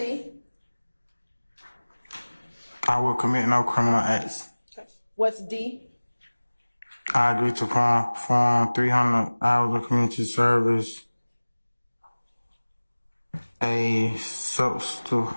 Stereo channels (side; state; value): both; inverted; correlation -1.00